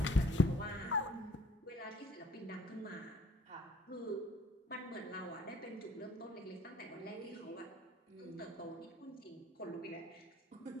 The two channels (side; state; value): both; normal; correlation 0.57